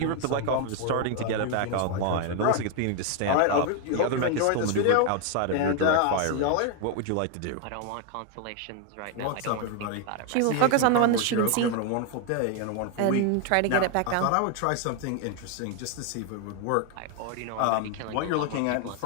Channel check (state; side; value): different; both; correlation 0.00